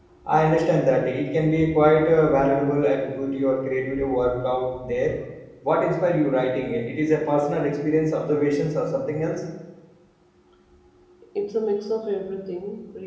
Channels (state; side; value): identical; both; correlation 1.00